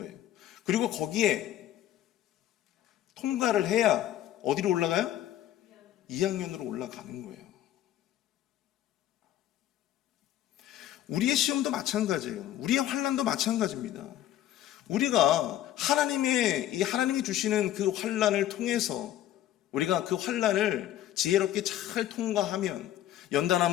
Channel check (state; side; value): quieter; right; 12.6 dB